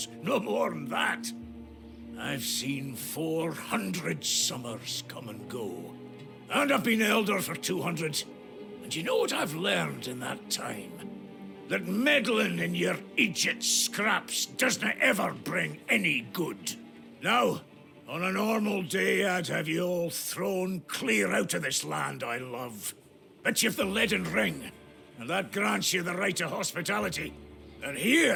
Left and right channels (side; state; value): both; identical; correlation 1.00